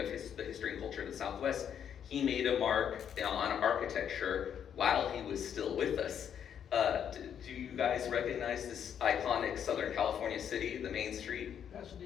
the history and culture of the Southwest, he made a mark on architecture while he was still with us. Do you guys recognize this iconic Southern California city, the main street?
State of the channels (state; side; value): quieter; right; 8.6 dB